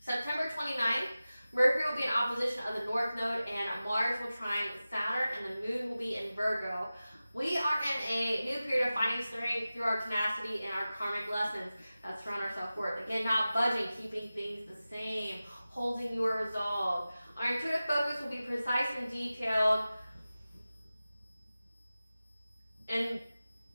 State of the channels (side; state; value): both; inverted; correlation -0.96